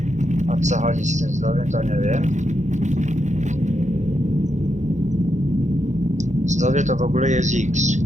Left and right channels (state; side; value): late; left; 0.35 ms